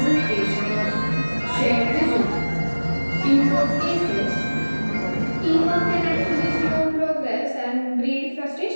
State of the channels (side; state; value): both; inverted; correlation -1.00